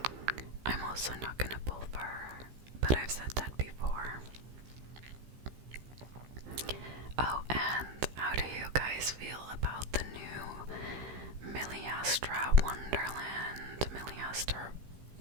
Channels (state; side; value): late; left; 15 ms